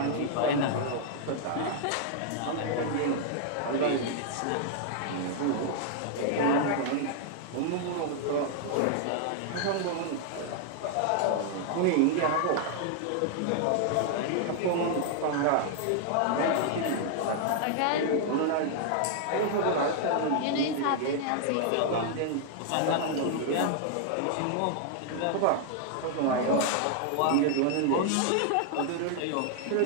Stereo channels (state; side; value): different; both; correlation -0.01